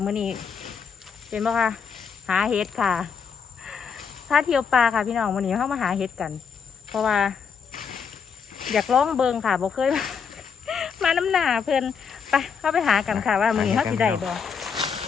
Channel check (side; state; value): right; quieter; 6.5 dB